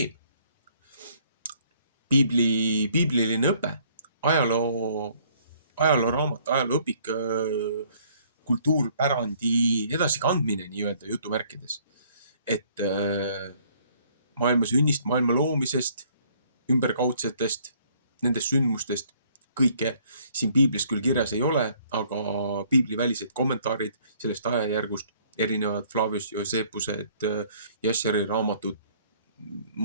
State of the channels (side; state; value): both; inverted; correlation -0.62